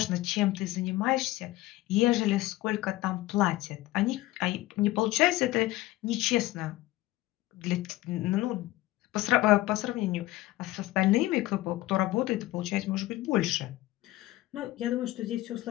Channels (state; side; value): quieter; right; 17.2 dB